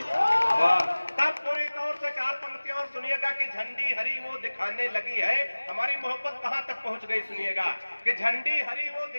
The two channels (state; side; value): inverted; both; correlation -1.00